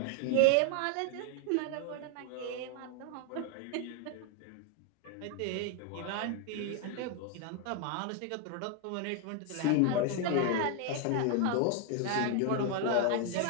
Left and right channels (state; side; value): different; both; correlation 0.00